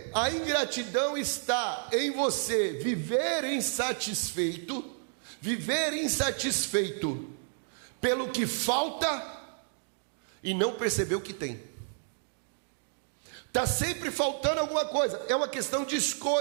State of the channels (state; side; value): silent; left; digital silence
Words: a ingratidão está em você viver insatisfeito pelo que falta e não perceber o que tem. Está sempre faltando alguma coisa, é uma questão de